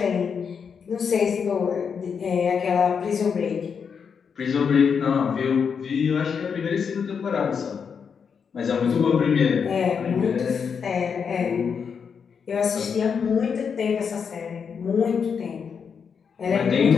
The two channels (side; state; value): right; quieter; 6.5 dB